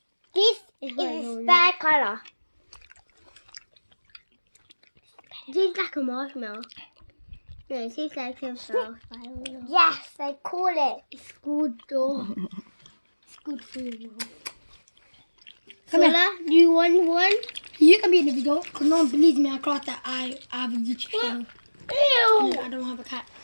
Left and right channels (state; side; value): inverted; both; correlation -1.00